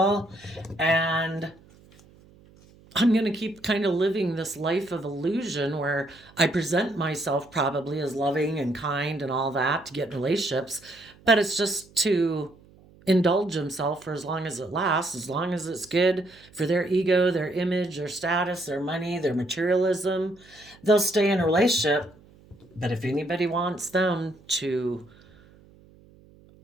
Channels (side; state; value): right; noise; hum, 26 dB below the sound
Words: And I'm going to keep kind of living this life of illusion where I present myself probably as loving and kind and all that to get in relationships, but it's just to indulge himself for as long as it lasts, as long as it's good for their ego, their image, their status, their money, their materialism. They'll stay in a relationship, but if anybody wants them to